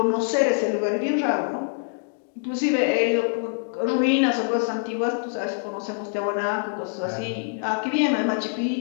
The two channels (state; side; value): silent; right; digital silence